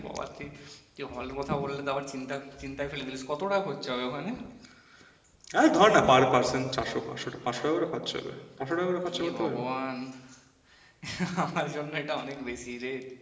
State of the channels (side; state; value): both; identical; correlation 1.00